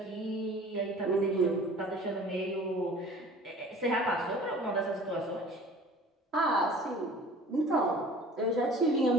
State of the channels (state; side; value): normal; both; correlation 0.45